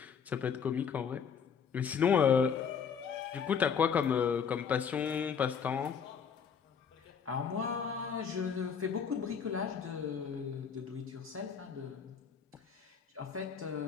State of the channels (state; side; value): quieter; right; 6.9 dB